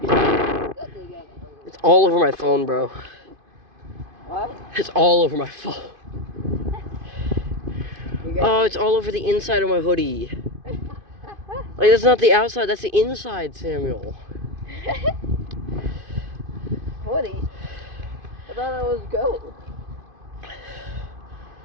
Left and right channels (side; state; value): left; late; 2.5 ms